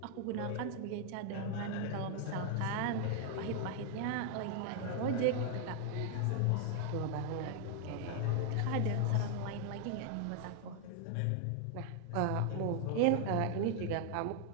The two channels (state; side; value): different; both; correlation 0.00